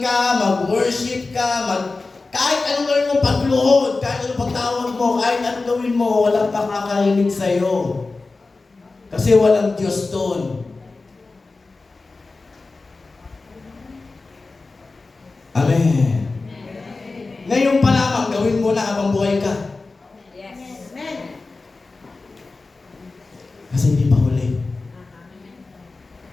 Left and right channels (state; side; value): quieter; right; 3.7 dB